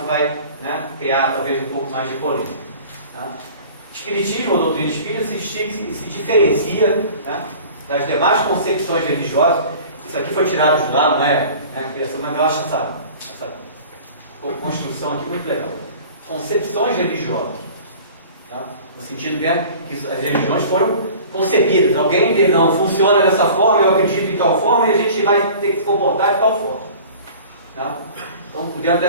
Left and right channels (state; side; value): inverted; both; correlation -0.44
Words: que vai, né, criar talvez um pouco mais de polêmica. Tá? Espiritismo ou doutrina espírita se diferencia, né, das demais concepções religiosas. Isso aqui foi tirado de lá, não é, né, criação, mas eu acho essa construção aqui muito legal. Concepções religiosas. Tá? No sentido que as religiões foram concebidas. Alguém diz, não, funciona dessa forma, eu acredito em tal forma, e a gente vai ter que se comportar de tal forma. Tá? Então, dentro